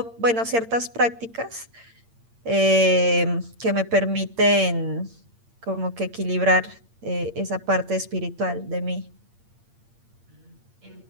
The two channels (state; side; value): late; left; 8.7 ms